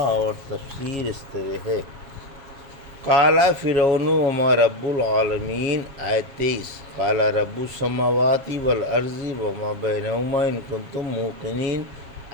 اور تفسیر اس طرح ہے۔ قال فرعون وما رب العالمین آیت 23، قال رب السماوات والارض وما بینہما ان کنتم موقنین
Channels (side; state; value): left; late; 7.3 ms